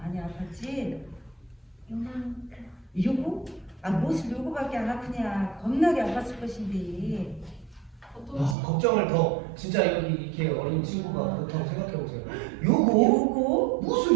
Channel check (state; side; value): drops out; left; at 8.6 s